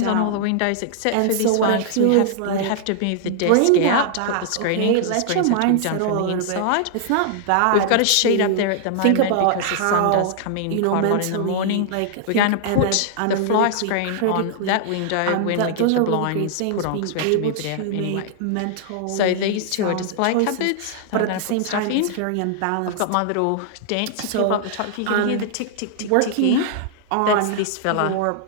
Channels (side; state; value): both; different; correlation -0.01